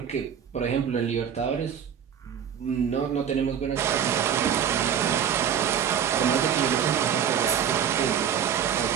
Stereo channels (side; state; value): left; quieter; 8.5 dB